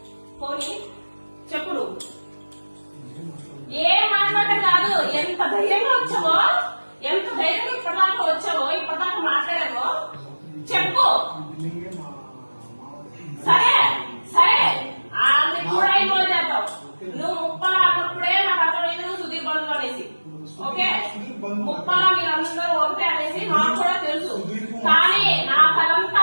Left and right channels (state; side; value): inverted; both; correlation -1.00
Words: చెప్పు నువ్వు ఏం మాట్లాడటం కాదు. ఎంత ధైర్యంగా వచ్చావో, ఎంత ధైర్యంగా ఇప్పటిదాకా వచ్చావో, ఇప్పటిదాకా మాట్లాడావో చెప్పు. సరే సరే ఆమె కూడా ఇన్వాల్వ్ చేద్దాం. నువ్వు ముప్పలా అన్నప్పుడే నాకు అర్థమైంది నువ్వు సుధీర్ బంధువు అనేసి. ఓకే, ముప్పలా మీరందరూ ఒకటే అనేసి నాకు కూడా తెలుసు. కానీ నాకు అదంతా